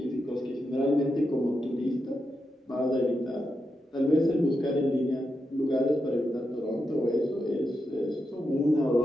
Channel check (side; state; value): both; normal; correlation 0.86